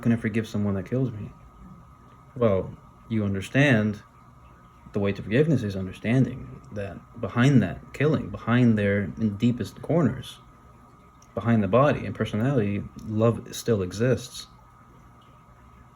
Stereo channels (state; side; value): identical; both; correlation 1.00